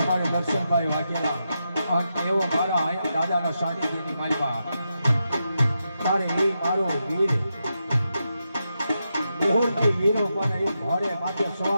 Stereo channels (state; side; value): inverted; both; correlation -0.86